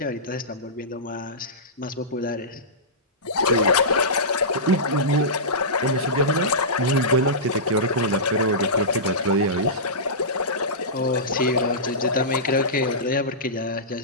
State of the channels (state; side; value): normal; both; correlation -0.18